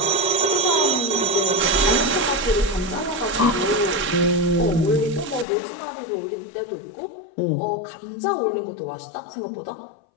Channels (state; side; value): drops out; right; at 5.5 s